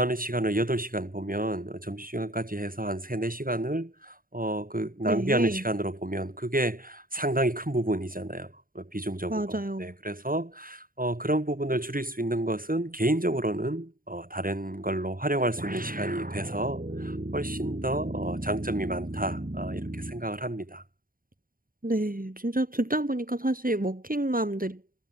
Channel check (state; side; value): late; left; 0.41 ms